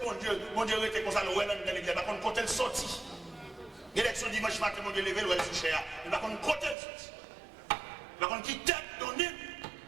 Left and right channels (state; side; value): drops out; left; at 6.8 s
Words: bon Dieu était comme ça, le ouais dans l'église, par contre, côté le sorti. L'élection dimanche matin, mon Dieu levé, le ouais sous cher. Mais par contre, côté le sorti. Par contre, qui tête donnée,